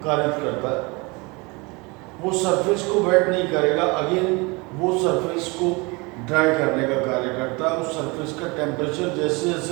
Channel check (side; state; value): left; quieter; 26.8 dB